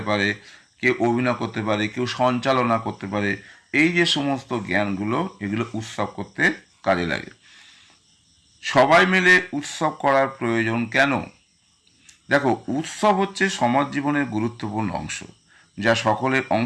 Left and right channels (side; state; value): both; identical; correlation 1.00